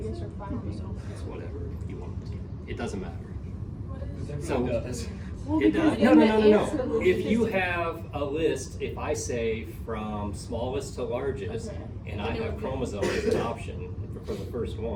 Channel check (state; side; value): identical; both; correlation 1.00